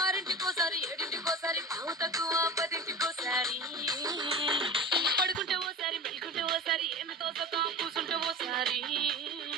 ఏడింటికోసారి పావు తక్కువ పదింటికోసారి పడుకుంటే ఓసారి మెలుకుంటే ఓసారి ఏమి తోసక కూసుంటే ఓసారి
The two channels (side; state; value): both; normal; correlation 0.31